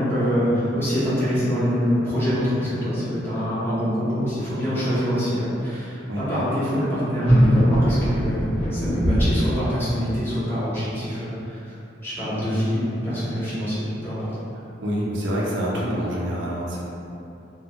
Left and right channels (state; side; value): normal; both; correlation 0.79